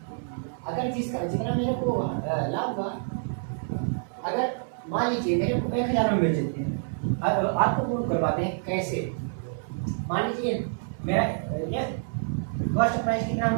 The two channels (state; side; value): silent; left; 60 dB below the other